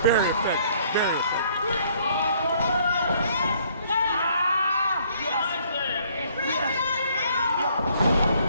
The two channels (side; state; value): both; inverted; correlation -0.63